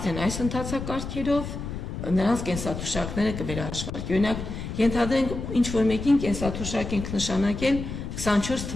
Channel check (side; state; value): left; noise; rumble, 7 dB below the sound